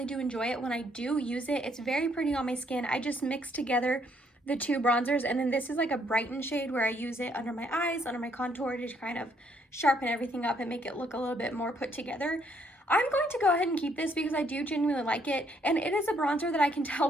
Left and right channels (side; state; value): both; normal; correlation 0.70